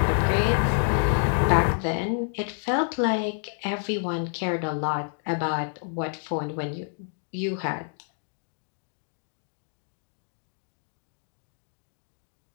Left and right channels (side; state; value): right; silent; digital silence